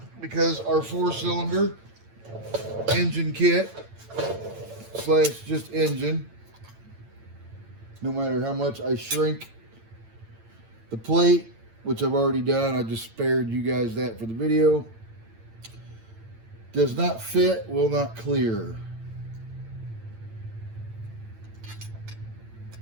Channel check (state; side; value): late; left; 8.9 ms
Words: because our 4-cylinder engine kit slash just engine, no matter how much I shrink the plate, which I've already done, I just spared you guys that for the video, does not fit, will not clear.